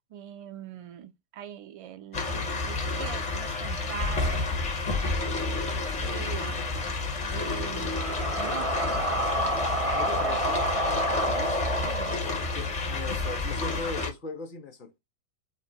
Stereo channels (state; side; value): late; left; 1.6 ms